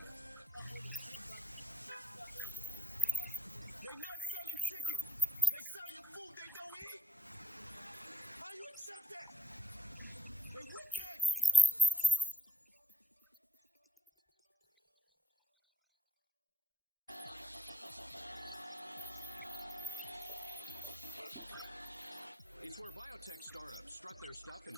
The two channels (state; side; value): normal; both; correlation 0.80